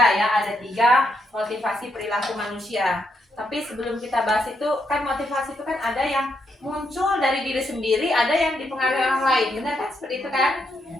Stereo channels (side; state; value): both; normal; correlation 0.79